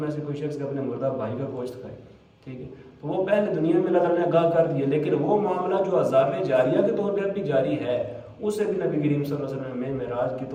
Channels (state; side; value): identical; both; correlation 1.00